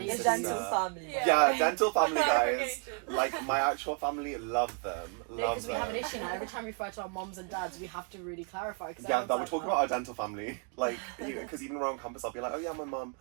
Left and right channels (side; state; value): left; quieter; 38.7 dB